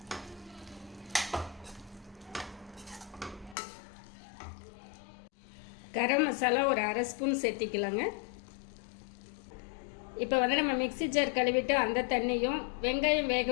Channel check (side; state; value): right; drops out; at 3.6 s